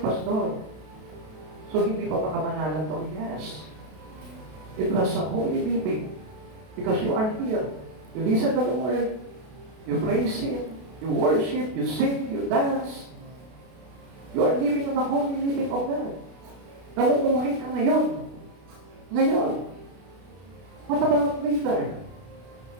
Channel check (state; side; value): late; left; 32 ms